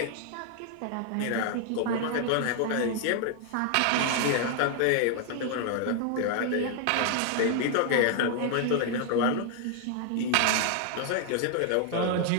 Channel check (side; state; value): both; different; correlation 0.00